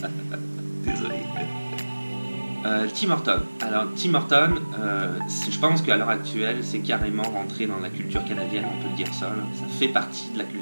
Désolé. Tim Horton. Alors Tim Horton, je pense qu'à l'heure actuelle, c'est carrément rentré dans la culture canadienne, on peut le dire ça. Là. Ça fait partie de la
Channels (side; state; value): both; inverted; correlation -1.00